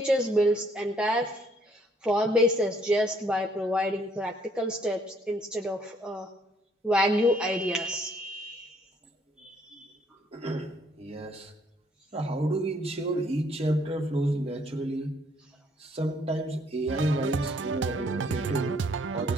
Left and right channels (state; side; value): normal; both; correlation 0.66